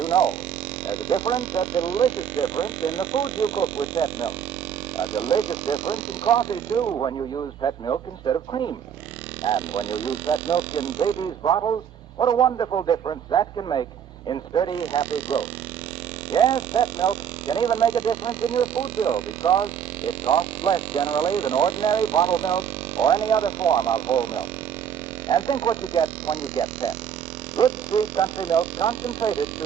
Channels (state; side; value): quieter; left; 8.5 dB